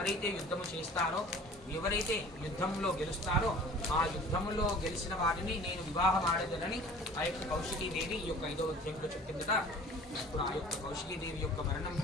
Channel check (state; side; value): normal; both; correlation 0.46